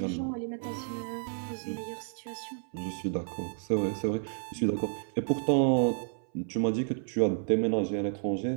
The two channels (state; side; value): silent; left; 57 dB below the other